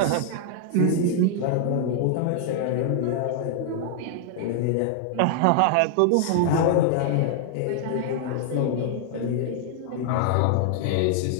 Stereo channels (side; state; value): both; different; correlation 0.00